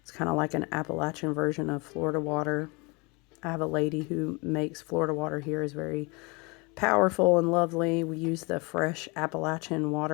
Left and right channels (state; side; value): quieter; right; 28.4 dB